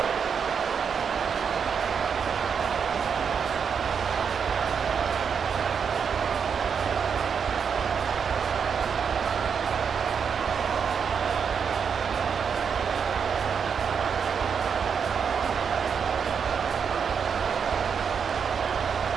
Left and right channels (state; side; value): quieter; left; 6.6 dB